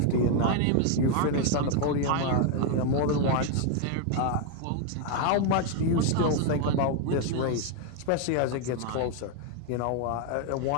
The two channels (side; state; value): both; different; correlation 0.01